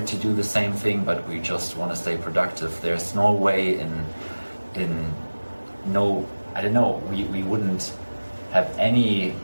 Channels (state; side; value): inverted; both; correlation -1.00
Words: to do the same thing, but we just want to stay productive. There's no way we wouldn't have any